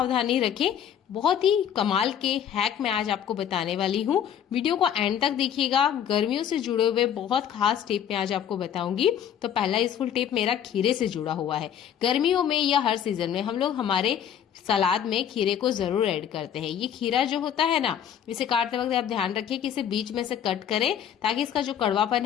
रखें। बहुत ही कमाल के हैक मैं आज आपको बताने वाली हूँ। वीडियो को एंड तक देखिएगा। गर्मियों से जुड़े हुए बहुत खास टिप मैं आज आपको बताऊंगी। तो पहला यूजफुल टिप मेरा खीरे से जुड़ा हुआ है। गर्मियों में या हर सीजन में हम लोग हमारे सलाद में खीरे को जरूर ऐड करते हैं। ये खीरा जो होता है ना, इसे काटते वक्त आप ध्यान रखिए कि इसे बीच में से कट करें ताकि इसका जो कड़वापन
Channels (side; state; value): right; quieter; 9.2 dB